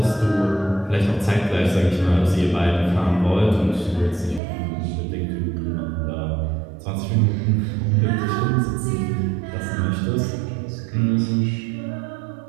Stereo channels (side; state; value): left; drops out; at 4.4 s